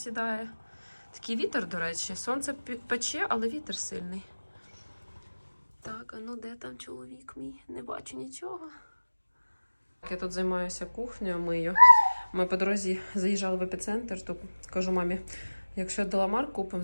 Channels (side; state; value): both; inverted; correlation -1.00